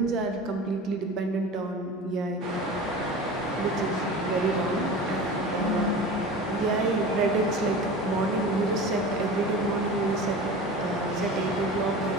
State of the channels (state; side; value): normal; both; correlation 0.34